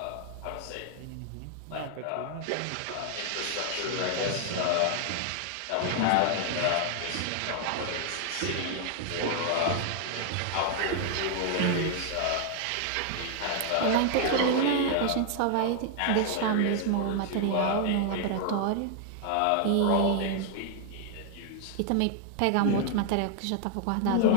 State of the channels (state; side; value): different; both; correlation 0.00